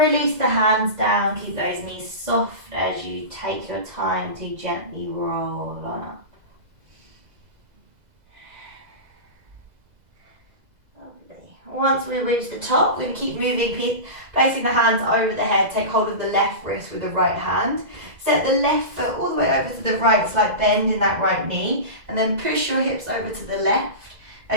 the hands down, keep those knees soft as you take your time to gently roll on up. Once we reach the top, we're going to keep moving, placing the hands over the head. Take hold of the left wrist with the right hand. Set the left foot all the way over to the right, slight bend in that right knee. And then push your hips over to the left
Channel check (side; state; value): left; late; 2.0 ms